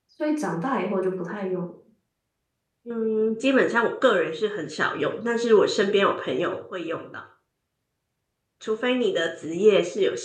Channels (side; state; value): both; identical; correlation 1.00